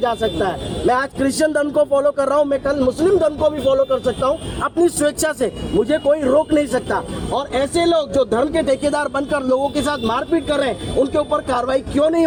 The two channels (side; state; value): both; identical; correlation 1.00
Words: जा सकता है। मैं आज क्रिश्चियन धर्म को फॉलो कर रहा हूँ, मैं कल मुस्लिम धर्म को भी फॉलो कर सकता हूँ अपनी स्वेच्छा से, मुझे कोई रोक नहीं सकता। और ऐसे लोग जो धर्म के ठेकेदार बनकर लोगों के साथ मारपीट कर रहे हैं, उनके ऊपर कार्रवाई क्यों नहीं